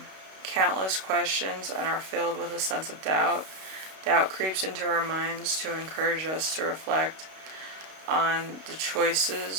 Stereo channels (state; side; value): late; left; 32 ms